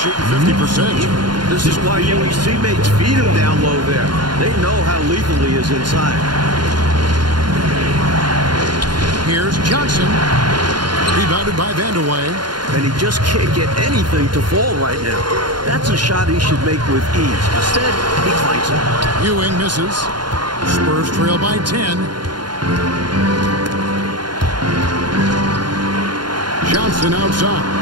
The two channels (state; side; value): late; left; 0.71 ms